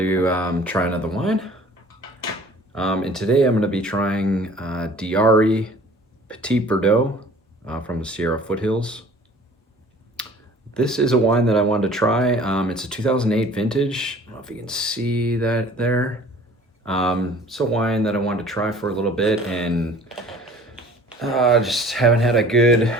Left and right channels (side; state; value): both; normal; correlation 0.50